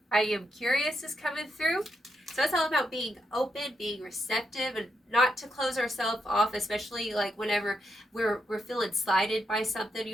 I am curious is coming through. So it's all about being open, being receptive, and not to close ourselves off, especially like whenever we're feeling slighted by something. You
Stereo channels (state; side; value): normal; both; correlation 0.82